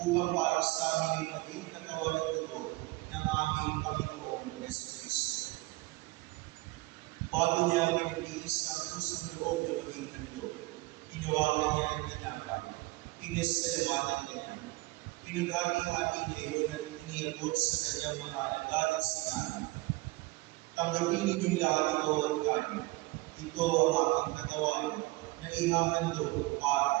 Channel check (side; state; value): left; quieter; 22.1 dB